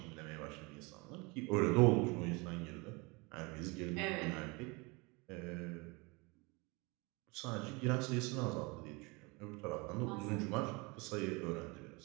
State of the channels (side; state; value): left; quieter; 27.2 dB